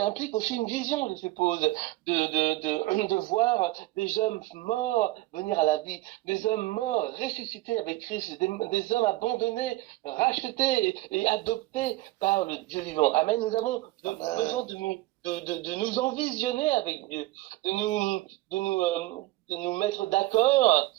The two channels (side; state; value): left; quieter; 18.5 dB